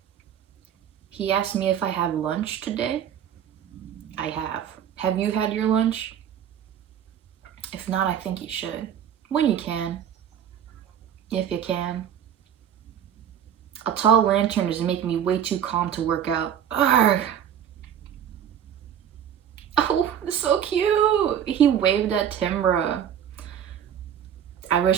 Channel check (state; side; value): quieter; left; 9.3 dB